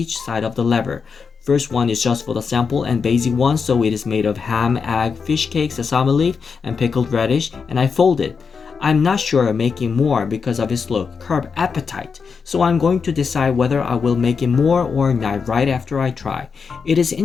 side of the lever. First one is just for the sample and basic one, so it is made of ham, egg, fish cake, sesame leaf, and pickled radish, and I fold it. I'm not sure of making more because of its look, curb appetite, so I'm going to decide whether I will make it more or not right after I try. It is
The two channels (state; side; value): quieter; right; 5.6 dB